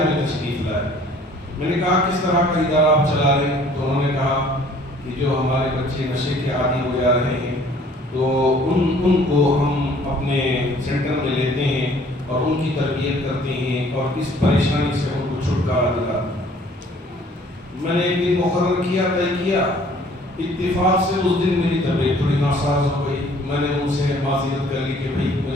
میں تشریف لائیں۔ میں نے کہا کس طرح کا ادارہ آپ چلا رہے ہیں؟ تو انہوں نے کہا کہ جو ہمارے بچے نشے کے عادی ہو جا رہے ہیں تو ان کو ہم اپنے سینٹر میں لیتے ہیں اور ان کی تربیت کرتے ہیں اور اس پریشانی سے ان کو چھٹکارا دلاتے ہیں۔ میں نے ایک دن مقرر کیا، طے کیا، اتفاق سے اس دن میری طبیعت تھوڑی ناساز ہو گئی۔ میں نے ان سے معذرت کر لی کہ بھائی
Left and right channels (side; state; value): both; normal; correlation 0.56